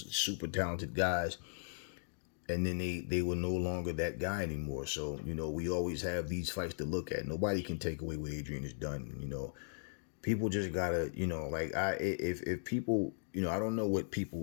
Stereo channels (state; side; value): silent; right; digital silence